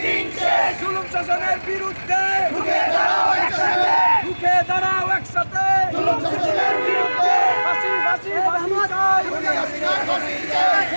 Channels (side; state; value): both; inverted; correlation -1.00